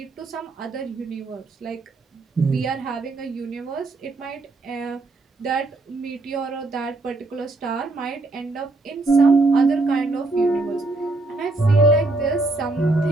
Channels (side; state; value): left; quieter; 3.2 dB